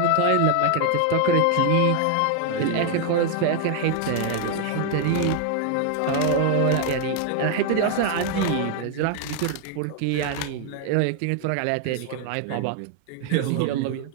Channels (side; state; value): both; different; correlation 0.00